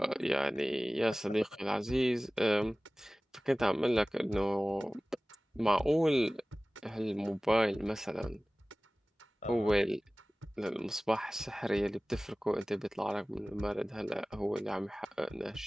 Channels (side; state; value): both; normal; correlation 0.98